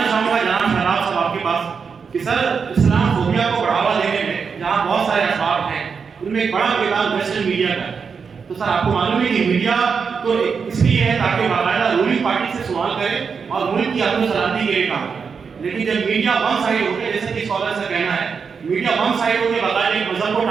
چاہوں گا جناب شہاب صاحب آپ کے پاس کہ سر اسلام فوبیا کو بڑھاوا دینے میں جہاں بہت سارے اسباب ہیں ان میں ایک بڑا کردار ویسٹرن میڈیا کا ہے، تو سر آپ کو معلوم ہے کہ میڈیا تو اس لیے ہے تاکہ باقاعدہ رولنگ پارٹی سے سوال کرے اور ملک کی امن و سلامتی کے لیے کام کرے، لیکن جب میڈیا ون سائڈ ہو کے جیسے کہ اسکالر سے کہنا ہے میڈیا ون سائڈ ہو کے باقاعدہ ایک مذہب کو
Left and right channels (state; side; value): quieter; left; 5.8 dB